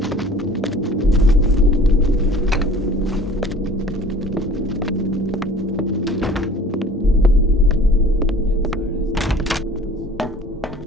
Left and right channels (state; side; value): normal; both; correlation 0.47